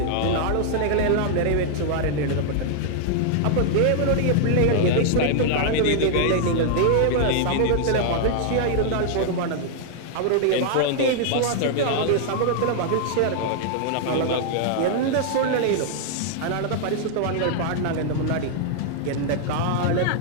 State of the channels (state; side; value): different; both; correlation -0.01